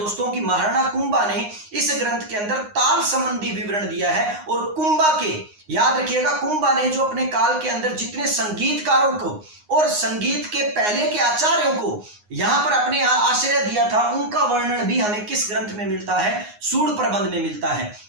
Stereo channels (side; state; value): left; late; 9.6 ms